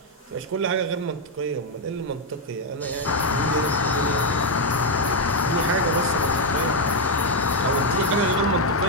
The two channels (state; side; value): normal; both; correlation 0.01